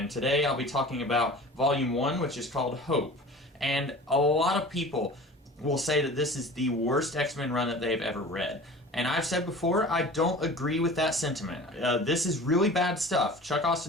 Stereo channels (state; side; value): normal; both; correlation 0.40